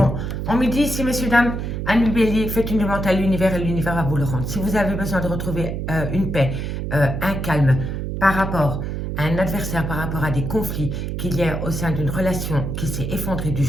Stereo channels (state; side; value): noise; right; hum, 3 dB below the sound